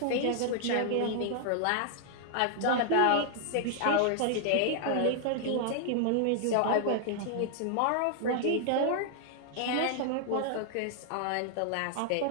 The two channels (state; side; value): different; both; correlation -0.01